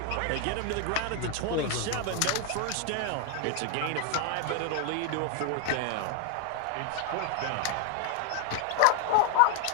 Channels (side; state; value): both; different; correlation 0.00